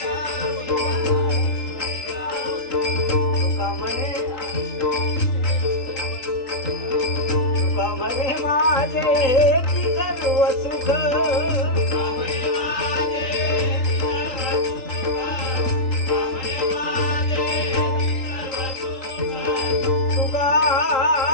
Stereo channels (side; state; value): right; late; 3.8 ms